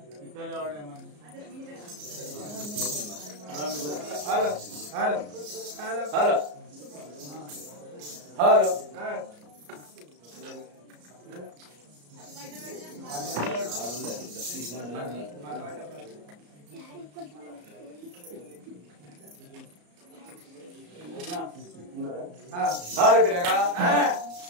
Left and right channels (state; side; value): late; left; 34 ms